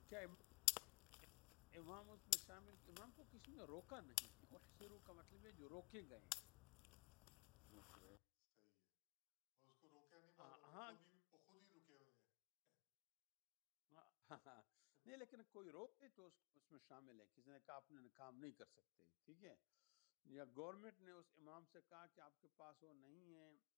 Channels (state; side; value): quieter; right; 30.0 dB